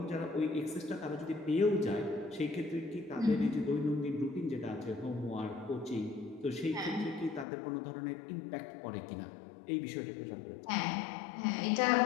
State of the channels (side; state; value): right; drops out; at 7.5 s